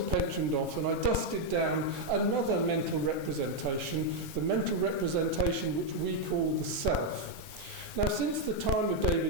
pensioned off and I dusted down another mental representation, the mental representation which we call the self. Now, since the time of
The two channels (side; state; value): left; late; 2.4 ms